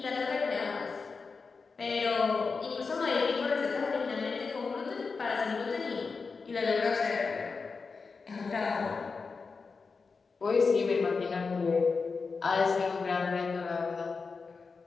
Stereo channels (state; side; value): quieter; right; 4.7 dB